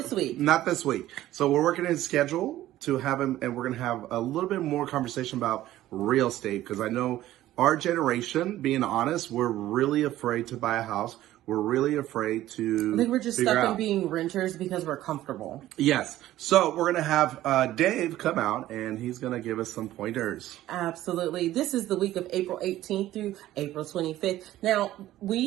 week. Not this week. So we're working in schedule to have him, and we're going to have a little bit more conversation about real estate, because I know our generation, being honest, we're really afraid to buy a house. We're really afraid to... I think we're just stuck in being renters because we're comfortable. Yes. So we're going to have Dave come out, and he's going to give us some pointers. Absolutely. This is the week of April 18th through April 25th. Now,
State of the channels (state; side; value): quieter; left; 14.4 dB